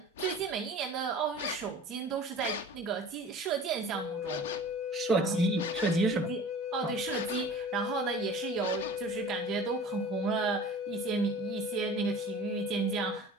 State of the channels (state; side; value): normal; both; correlation 0.42